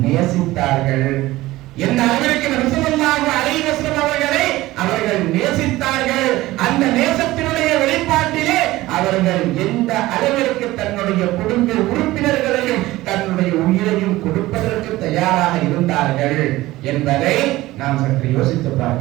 நேசித்தார்கள், எந்த அளவிற்கு நபி ஸல்லல்லாஹு அலைஹி வஸல்லம் அவர்களை அவர்கள் நேசித்தார்கள், அந்த நேசத்தினுடைய வெளிப்பாட்டிலே அவர்கள் எந்த அளவிற்கு தன்னுடைய குடும்ப உறுப்பினர்களையும் தன்னுடைய உயிரையும் கொடுப்பதற்கு தயாராக இருந்தார்கள் என்பதை நாம் சற்று யோசித்து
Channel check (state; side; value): quieter; left; 17.7 dB